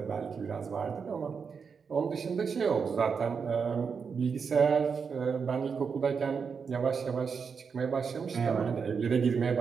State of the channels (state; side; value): quieter; left; 5.9 dB